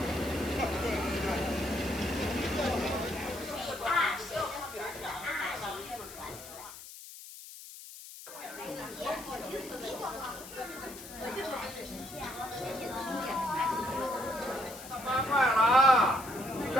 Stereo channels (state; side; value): noise; left; hiss, 14 dB below the sound